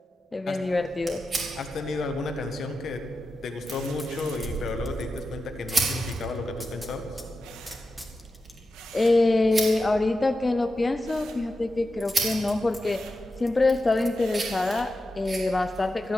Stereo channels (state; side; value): normal; both; correlation 0.91